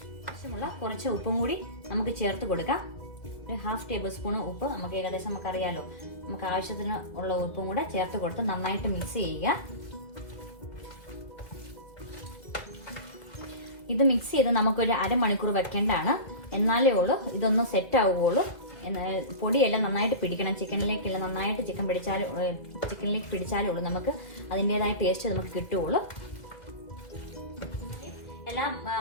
ആവശ്യമുള്ള കുറച്ച് ഉപ്പും കൂടി നമുക്ക് ചേർത്ത് കൊടുക്കാം. ഒരു 1/2 ടേബിൾ സ്പൂൺ ഉപ്പ് നമുക്ക് ഏകദേശം നമുക്കറിയാലോ. നമുക്ക് ആവശ്യത്തിന് ഉള്ള ഉപ്പും കൂടെ ചേർത്ത് കൊടുത്ത് നന്നായിട്ട് മിക്സ് ചെയ്യുക. ഇത് മിക്സ് ചെയ്ത് നമുക്കൊരു അരമണിക്കൂർ വെക്കേണ്ടതാണ്. എന്നാലേ ഉള്ളൂ ഇതൊന്ന് സെറ്റ് ആവുകയുള്ളൂ. പൊടിയെല്ലാം നന്നായിട്ട് പിടിക്കണം. ചിക്കനിലേക്കെല്ലാം നന്നായിട്ട് ചിക്കനിലേക്ക് പിടിച്ചാലേ ഉള്ളൂ നമുക്ക് അതിൻ്റെതായ ടേസ്റ്റ് നമുക്ക് കിട്ടുകയുള്ളൂ. എല്ലാ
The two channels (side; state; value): right; late; 2.0 ms